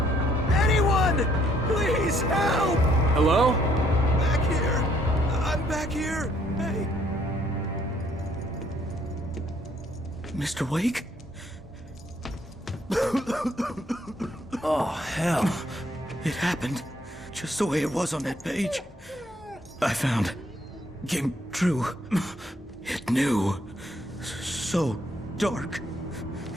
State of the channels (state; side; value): normal; both; correlation 0.67